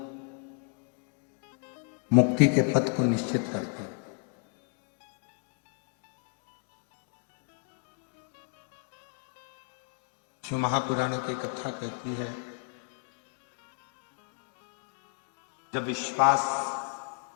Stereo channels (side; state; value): right; quieter; 39.0 dB